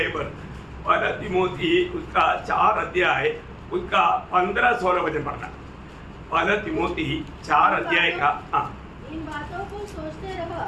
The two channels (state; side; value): identical; both; correlation 1.00